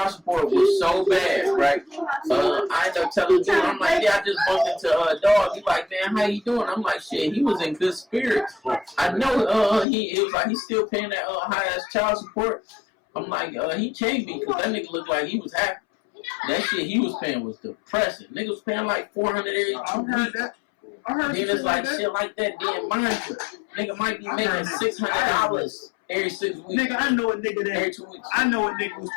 support was so bad, right? I ended up telling dude, I'm like, yeah, I just bumped into a dog. He like, man, how you doing? I'm like, shit, he was in good spirits. I know it was like he's still paying that high ass child support. I'm like, he can't be because that nigga looked like he was happy. That shit he was paying was depressing. Nigga was paying like $400 every 2 weeks. Then it's like shit like that. Then mind you, nigga might be making $600 every 6 weeks. Nigga, I know a nigga Every that 2 weeks. I know a nigga was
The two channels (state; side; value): drops out; right; at 9.9 s